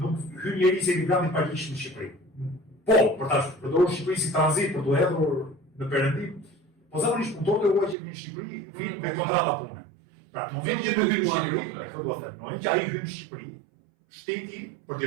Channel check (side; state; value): left; drops out; at 8.0 s